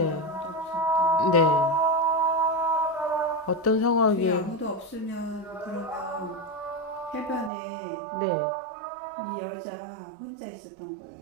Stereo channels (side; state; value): left; drops out; at 7.5 s